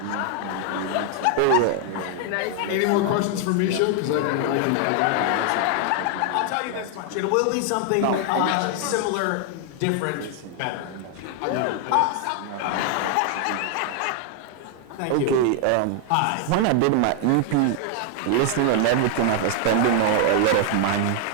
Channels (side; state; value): both; different; correlation 0.00